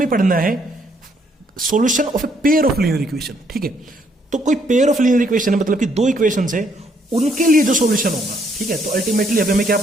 पढ़ना है solution of a pair of linear equation, ठीक है। तो कोई पेयर ऑफ लीनियर इक्वेशन है, मतलब कि दो इक्वेशंस है, उनके लिए जो सॉल्यूशन होगा, ठीक है। तो अल्टीमेटली अभी हमें क्या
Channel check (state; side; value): normal; both; correlation 0.69